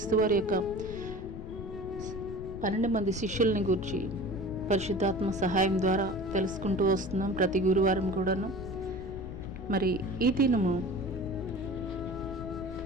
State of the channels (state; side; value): noise; left; rumble, 10 dB below the sound